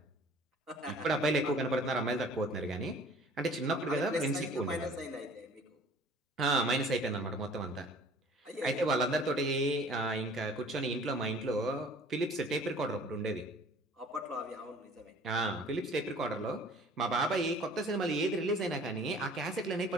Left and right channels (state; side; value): normal; both; correlation 0.50